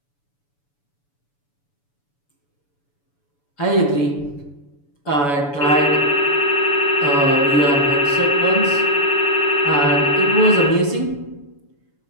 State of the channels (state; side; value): late; right; 7.0 ms